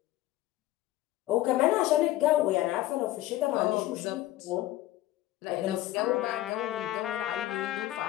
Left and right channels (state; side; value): quieter; right; 15.4 dB